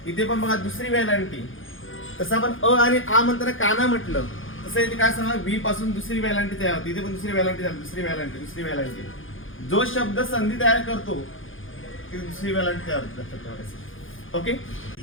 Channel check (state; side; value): late; right; 0.58 ms